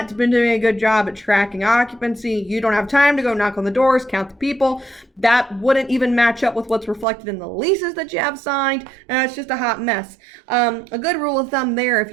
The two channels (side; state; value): left; drops out; at 7.1 s